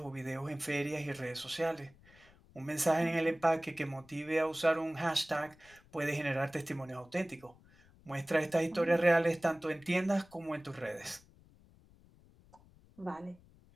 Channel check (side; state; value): left; noise; rumble, 26 dB below the sound